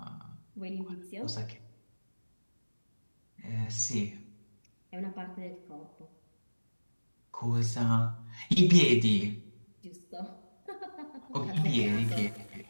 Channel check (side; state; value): both; inverted; correlation -1.00